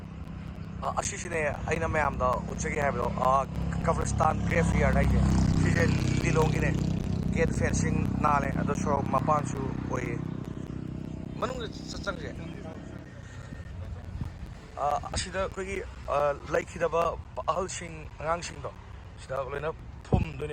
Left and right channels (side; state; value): both; identical; correlation 1.00